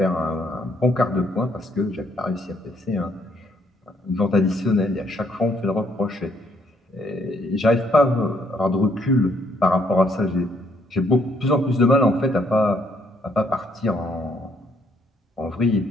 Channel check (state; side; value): normal; both; correlation 0.70